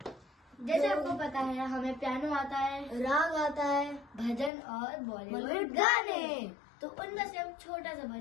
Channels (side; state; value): right; drops out; at 4.5 s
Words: जैसे आपको पता है हमें पियानो आता है, राग आता है, भजन और बॉलीवुड गाने। तो उनमें से हम छोटा सा